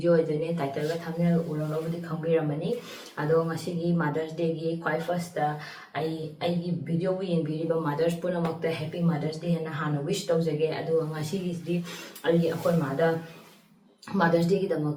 idone title ga thumbnail ulolo budi khangbiramani. Ado ngasi Mother's Day gi quite first ai gi video wi biriba mothers puna makta happy Mother's Day na hana wish tawjage. Ado ngasi gi di ai akoi mada Mother's Day ki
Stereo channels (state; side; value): identical; both; correlation 1.00